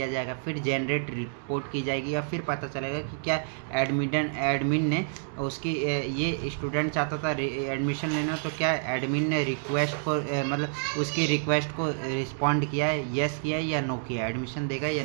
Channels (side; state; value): left; silent; digital silence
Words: जाएगा, फिर जनरेट रिपोर्ट की जाएगी, या फिर पता चलेगा कि क्या एडमिन ने उसकी ये स्टूडेंट चाहता था एडमिशन लेना, तो क्या एडमिन ने रिक्वेस्ट को मतलब उसकी रिक्वेस्ट को रिस्पॉन्ड किया है, येस किया है या नो किया है, एडमिशन देगा या